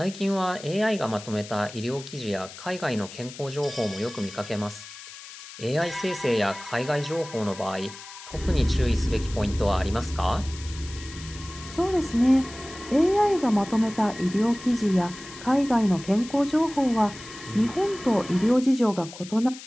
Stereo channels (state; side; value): noise; left; hiss, 15 dB below the sound